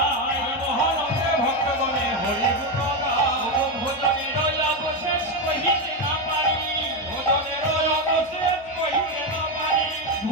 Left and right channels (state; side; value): noise; right; hum, 26 dB below the sound